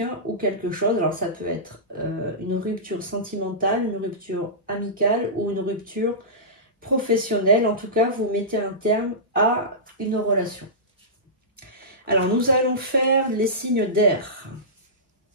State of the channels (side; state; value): both; normal; correlation -0.18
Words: ou quelque chose. Alors, ça peut être une rupture sentimentale, une rupture amicale ou une rupture professionnelle. En tout cas, vous mettez un terme à une relation. Alors, nous allons faire les signes d'air.